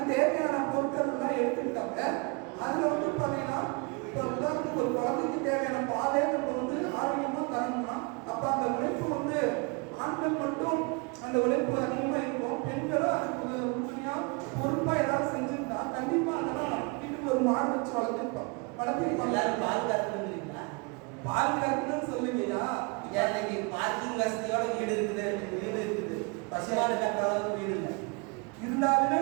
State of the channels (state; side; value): quieter; left; 30.9 dB